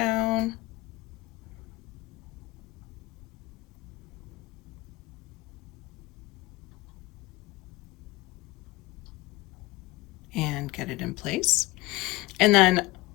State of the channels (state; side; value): quieter; right; 20.3 dB